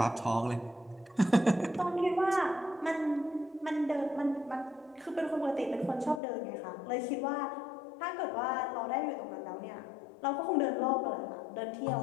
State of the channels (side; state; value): right; drops out; at 6.2 s